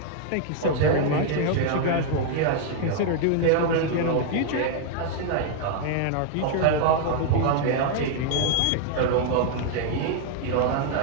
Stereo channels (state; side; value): different; both; correlation 0.00